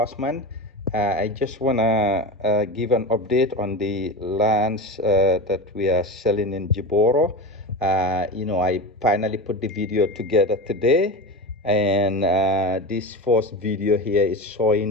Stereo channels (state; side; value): normal; both; correlation 0.25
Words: I just wanna give an update on the lands that we are selling in Jiboroh. I finally put the video together today, and this first video here is